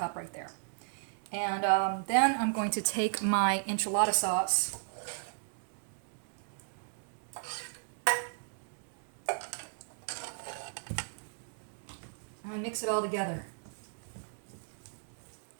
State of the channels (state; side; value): silent; left; digital silence